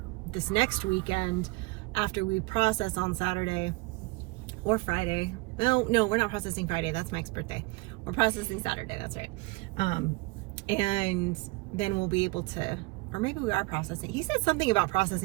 this next weekend after we process on Saturday or Friday. No, we're not processing Friday. That's Mike's birthday. We're processing Saturday. That's right. And then we'll be able to, or maybe we are processing. He said something about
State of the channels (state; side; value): quieter; left; 24.7 dB